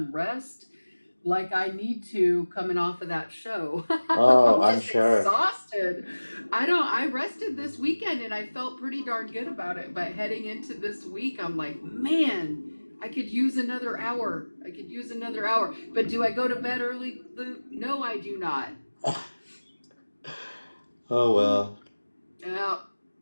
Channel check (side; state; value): both; inverted; correlation -1.00